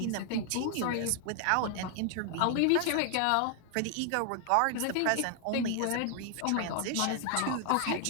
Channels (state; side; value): different; both; correlation 0.00